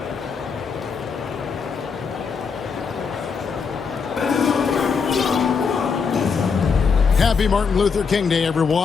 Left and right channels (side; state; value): right; quieter; 5.6 dB